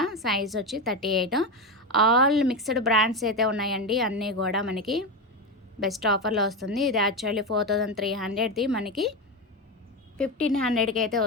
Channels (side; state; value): both; normal; correlation 0.15